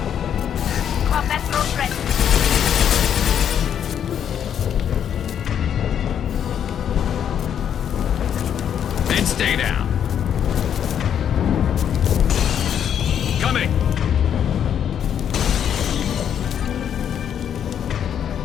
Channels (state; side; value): quieter; right; 8.9 dB